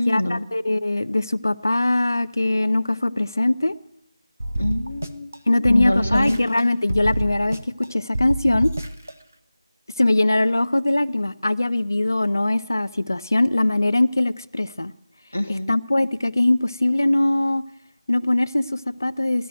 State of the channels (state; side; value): inverted; both; correlation -0.98